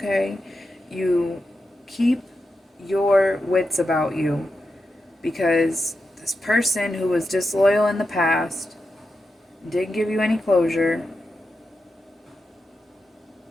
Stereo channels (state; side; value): normal; both; correlation 0.88